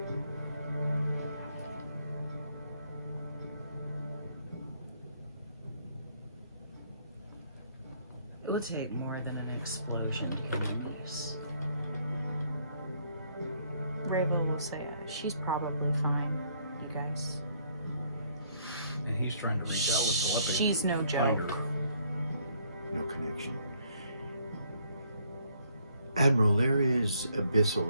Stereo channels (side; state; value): both; inverted; correlation -0.67